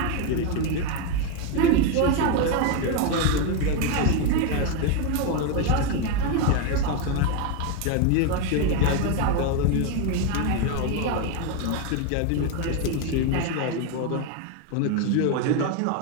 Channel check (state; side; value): different; both; correlation 0.02